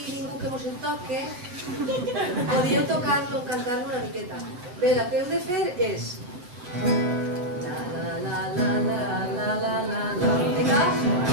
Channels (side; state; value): left; late; 8.1 ms